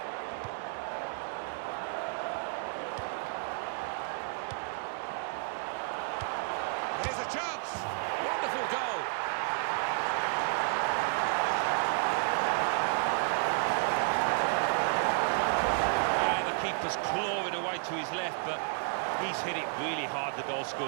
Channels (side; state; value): left; silent; 57 dB below the other